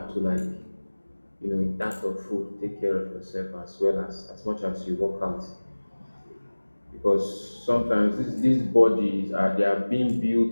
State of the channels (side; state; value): both; inverted; correlation -1.00